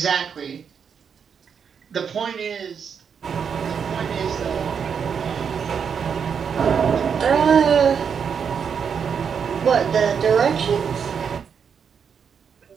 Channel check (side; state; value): left; quieter; 6.9 dB